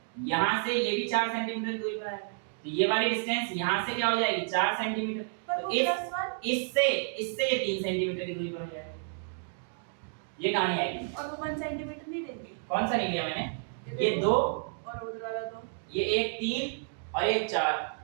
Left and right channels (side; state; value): left; silent; digital silence